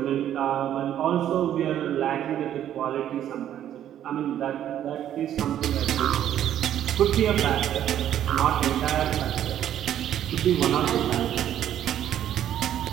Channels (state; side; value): quieter; left; 10.9 dB